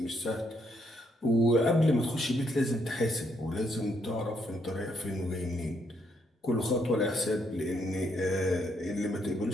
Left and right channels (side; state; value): both; normal; correlation 0.74